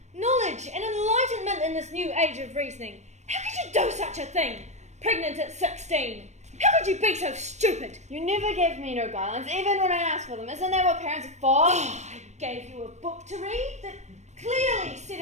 knowledge and enlightenment in this new age of reasoning. How could you do such a thing? Pregnant at 16. How could you be so stupid? You never gave me no guidelines, even when I asked for them. Isn't that what parents are for? Oh, I gave you a book to read that clearly set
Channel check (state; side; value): late; left; 0.33 ms